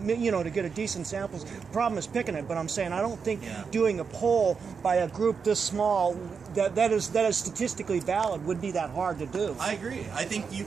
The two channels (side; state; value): left; quieter; 5.8 dB